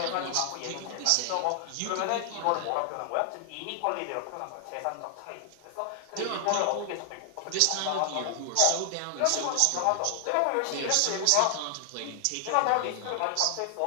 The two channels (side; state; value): both; different; correlation 0.00